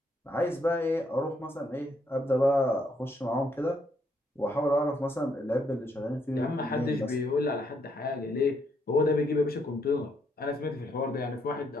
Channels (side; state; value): both; normal; correlation 0.73